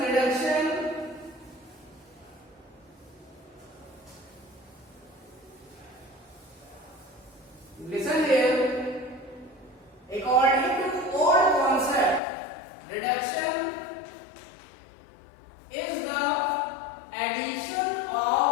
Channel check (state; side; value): drops out; right; at 12.2 s